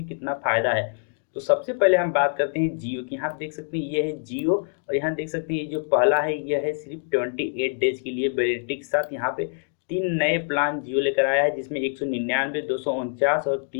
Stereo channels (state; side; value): silent; right; digital silence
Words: कितना फायदा है। तो सबसे पहले हम बात करते हैं जियो की। यहाँ देख सकते हैं ये है जियो और यहाँ देख सकते हैं ये जो पहला है यह है सिर्फ 28 डेज के लिए वैलिडिटी के साथ। यहाँ पे 3 नए प्लान जियो लेकर आया है जिसमें 199, 249 और